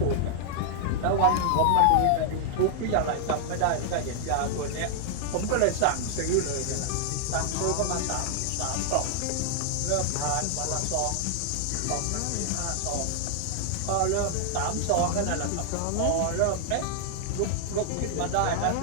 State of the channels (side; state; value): both; different; correlation 0.00